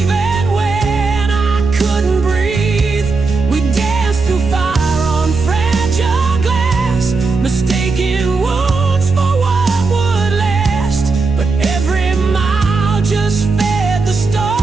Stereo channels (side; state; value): left; quieter; 4.0 dB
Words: when I couldn't breathe. We danced through fire on fragile glass, mistaking wounds for what would last. But every mile just fed the